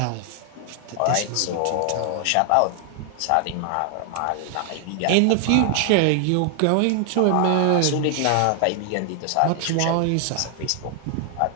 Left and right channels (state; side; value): different; both; correlation 0.00